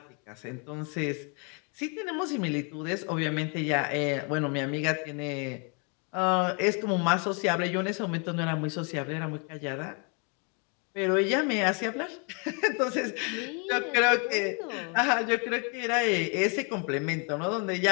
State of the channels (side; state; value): right; quieter; 35.6 dB